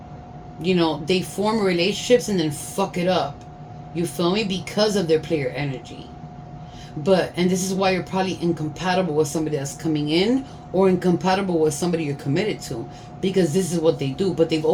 You know, they form relationships and then fuck it up. You feel me? Because of their player energy. And this is why you're probably incompatible with somebody that's coming in, or incompatible with somebody you're committed to, because this is what they do. But they've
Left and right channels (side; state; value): both; identical; correlation 1.00